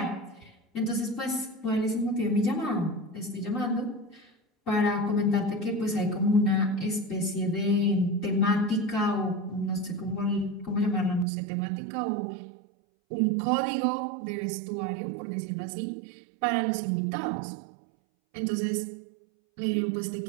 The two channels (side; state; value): left; drops out; at 11.2 s